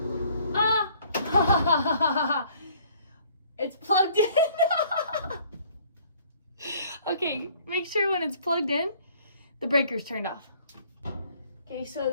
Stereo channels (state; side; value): inverted; both; correlation -0.58